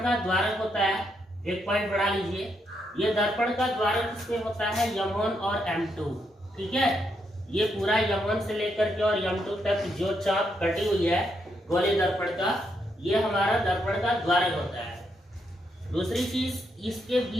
का द्वारक होता है, एक पॉइंट बढ़ा लीजिए। ये दर्पण का द्वारक इसमें होता है M1 और M2, ठीक है। ये पूरा M1 से लेकर के और M2 तक जो चाप कटी हुई है गोलीय दर्पण का, ये हमारा दर्पण का द्वारक होता है। दूसरी चीज, इसके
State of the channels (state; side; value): normal; both; correlation 0.79